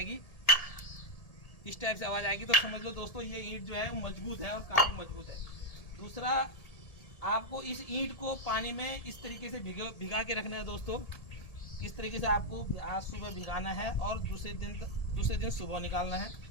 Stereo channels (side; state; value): right; late; 1.7 ms